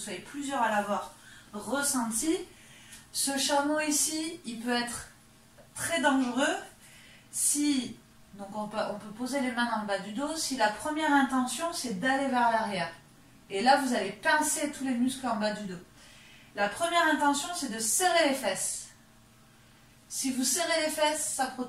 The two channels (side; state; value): both; identical; correlation 1.00